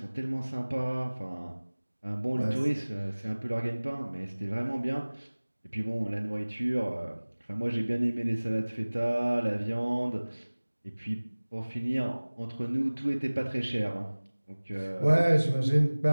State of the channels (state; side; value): inverted; both; correlation -1.00